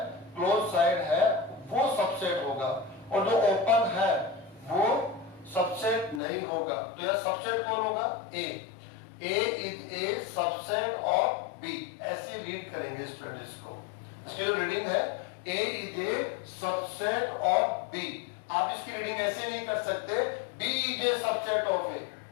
क्लोज साइड है, वो सबसेट होगा, और जो ओपन है वो सबसेट नहीं होगा। तो यह सबसेट कौन होगा, A is a subset of B, ऐसे रीड करेंगे स्टूडेंट इसको। इसकी जो रीडिंग है, A is a subset of B, आप इसकी रीडिंग ऐसे नहीं कर सकते, B is a subset of A,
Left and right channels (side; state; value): right; drops out; at 6.2 s